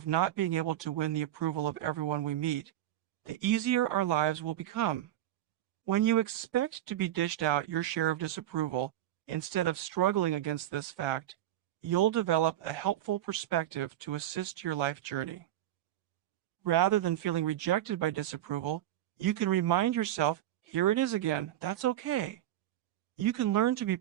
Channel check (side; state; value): left; quieter; 12.9 dB